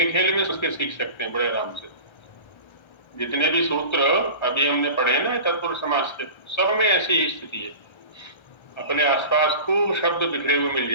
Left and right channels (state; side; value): late; right; 1.3 ms